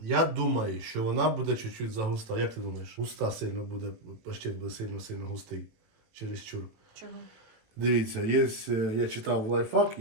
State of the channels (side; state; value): left; late; 18 ms